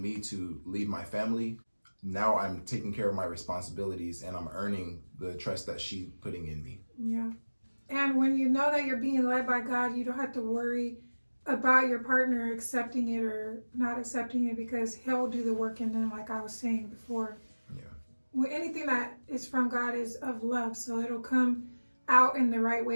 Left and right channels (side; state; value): both; inverted; correlation -1.00